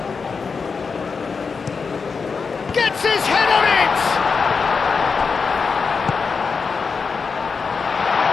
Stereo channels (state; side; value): quieter; right; 5.2 dB